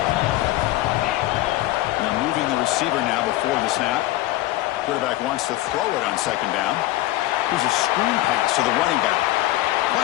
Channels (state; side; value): quieter; right; 16.6 dB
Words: Now moving the receiver now before the snap. Quarterback wants to throw it on 2nd down. Here's a screen pass to the running back.